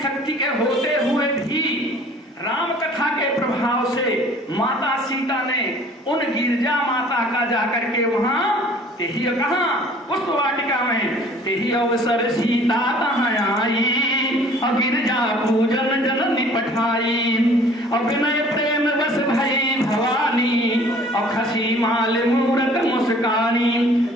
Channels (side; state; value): both; normal; correlation 0.52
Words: के होते हुए भी राम कथा के प्रभाव से माता सीता ने उन गिरजा माता का जाकर के वहां तेही कहा पुष्प वाटिका में तेही अवसर सीता तहां आई और गिरजा पूजन जननी पठाई और विनय प्रेम बस भई भवानी और खसी माल मूरत मुस्कानी।